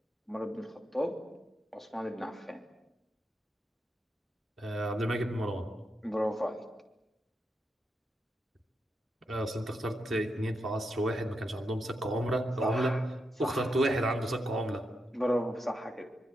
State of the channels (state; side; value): normal; both; correlation 0.84